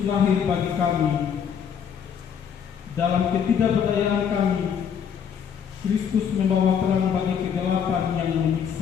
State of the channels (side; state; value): right; quieter; 7.7 dB